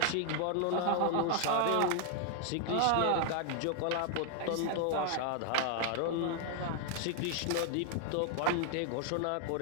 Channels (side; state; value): both; different; correlation 0.00